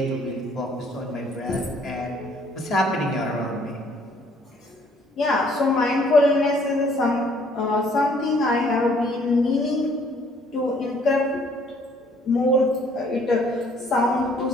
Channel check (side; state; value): both; normal; correlation 0.61